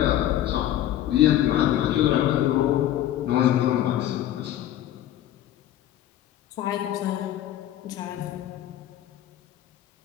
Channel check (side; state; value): right; quieter; 12.4 dB